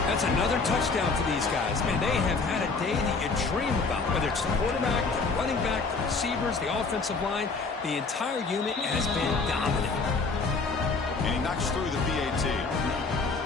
That's another touchdown for these guys. Man, they have had a day that you dream about, whether it's the quarterback, the running back, the receivers, the offensive line. The entire unit has been dominant. And he knocks through the PAT.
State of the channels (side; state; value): right; quieter; 4.2 dB